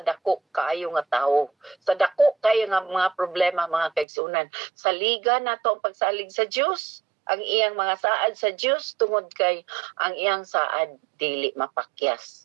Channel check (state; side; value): drops out; left; at 4.0 s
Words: dako kaayo nga tawo, sa dako kayo nga mga problema mga kaigsuonan. Sa liga nato ang pagsalig sa Dios, ang iyang mga saad sa Dios, tungod kay ang iyang saad dili